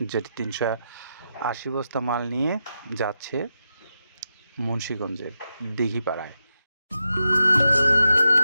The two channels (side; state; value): both; inverted; correlation -0.87